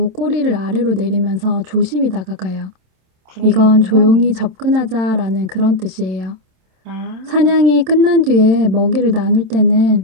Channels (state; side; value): late; left; 27 ms